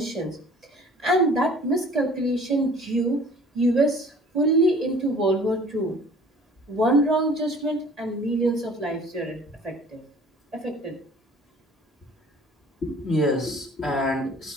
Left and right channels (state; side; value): normal; both; correlation 0.50